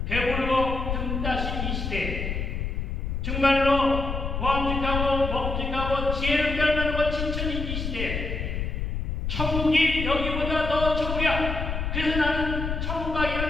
배부르고 등 따신 이 시대에 정말로 보암직하고 먹직하고 지혜를 빼앗는 진천인 이 시대에 천국이 여기보다 더 좋으랴. 그래서 나는 천국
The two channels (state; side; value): noise; left; rumble, 3 dB below the sound